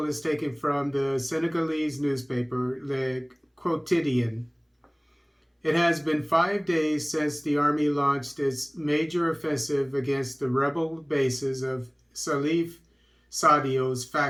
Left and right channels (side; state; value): both; identical; correlation 1.00